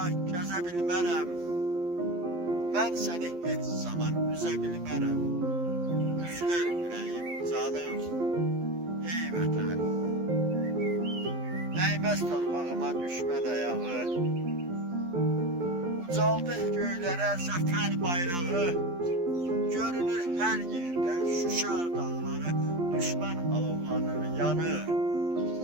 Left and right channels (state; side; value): late; left; 12 ms